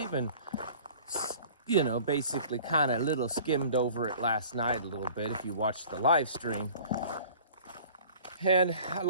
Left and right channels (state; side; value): inverted; both; correlation -0.47